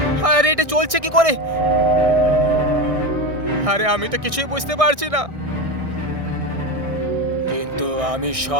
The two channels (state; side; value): late; left; 1.6 ms